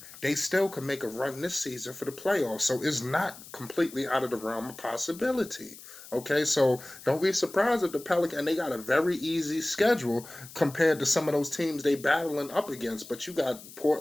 they still can make a run this season for the playoffs. So it's not completely out of the realm of possibility. Okay, so don't be surprised if the Pelicans, and they got a very easy schedule compared to some of those teams they battling up against. But you got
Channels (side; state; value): left; noise; hiss, 17 dB below the sound